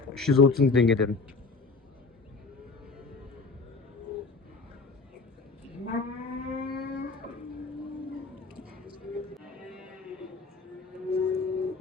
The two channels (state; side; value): quieter; right; 4.2 dB